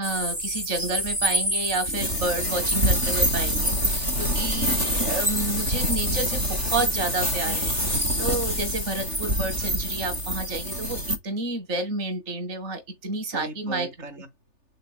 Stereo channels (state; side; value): late; left; 3.4 ms